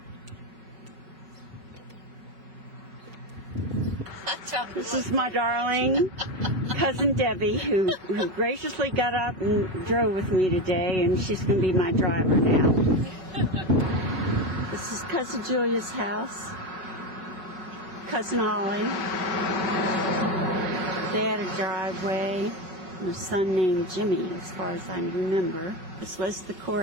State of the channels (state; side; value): late; left; 5.4 ms